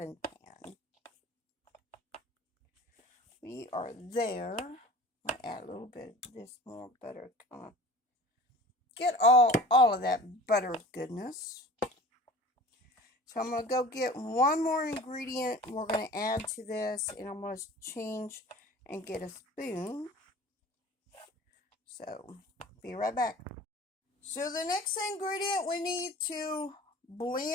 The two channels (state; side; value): normal; both; correlation 0.41